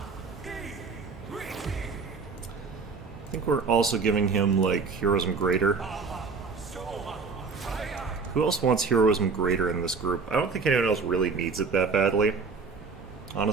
think we're also giving him like Heroism Greater. Who else wants Heroism Greater in this group? I don't think anyone else really needs it that badly,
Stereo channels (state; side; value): quieter; left; 4.8 dB